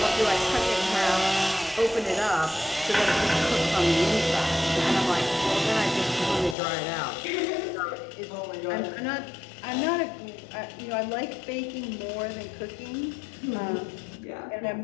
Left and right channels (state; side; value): drops out; right; at 6.6 s